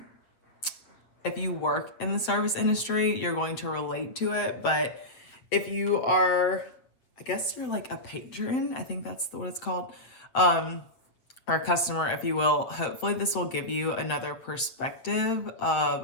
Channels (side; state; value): right; late; 7.7 ms